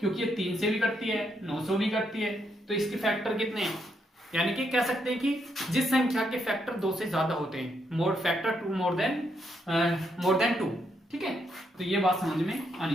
ये 3 से भी करती है, 9 से भी करती है, तो इसके फैक्टर कितने हैं, यानी कि कह सकते हैं कि जिस संख्या के फैक्टर 2 से ज्यादा होते हैं, मोर फैक्टर 2 मोर देन 2, ठीक है। तो ये बात समझ में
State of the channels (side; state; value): both; normal; correlation 0.77